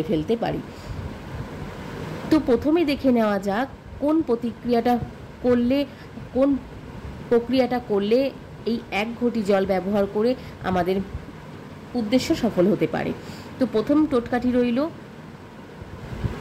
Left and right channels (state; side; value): identical; both; correlation 1.00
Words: ফেলতে পারি। তো প্রথমে দেখে নেওয়া যাক কোন প্রক্রিয়াটা করলে এই 1 ঘটি জল ব্যবহার করে আমাদের উদ্দেশ্য সফল হতে পারে। তো প্রথম টোটকাটি রইল,